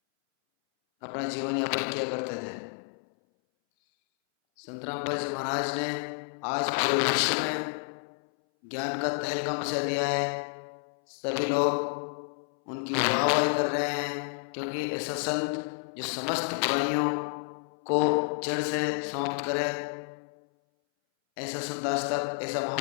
अपना जीवन यापन किया करते थे। संत रामपाल जी महाराज ने आज पूरे विश्व में ज्ञान का तहलका मचा दिया है। सभी लोग उनकी वाहवाही कर रहे हैं क्योंकि ऐसा संत जो समस्त बुराइयों को जड़ से समाप्त करे, ऐसा संत आज तक, ऐसा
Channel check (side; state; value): right; silent; 58 dB below the other